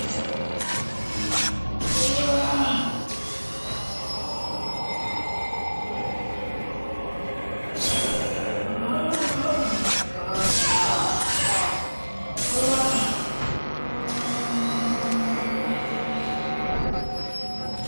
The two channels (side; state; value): both; inverted; correlation -1.00